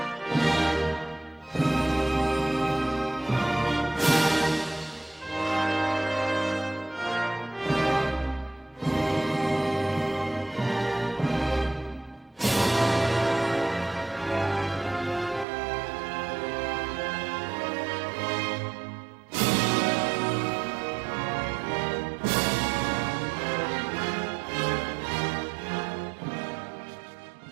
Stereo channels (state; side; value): drops out; left; at 15.5 s